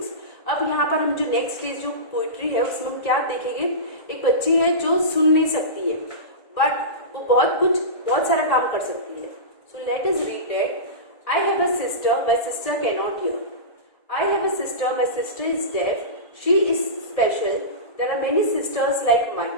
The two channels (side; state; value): right; late; 1.7 ms